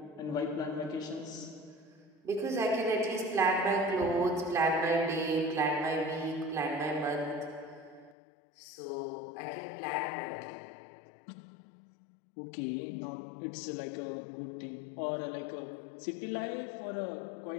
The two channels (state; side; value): drops out; right; at 8.2 s